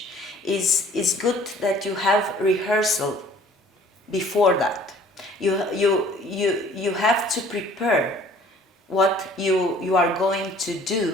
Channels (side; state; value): both; normal; correlation 0.53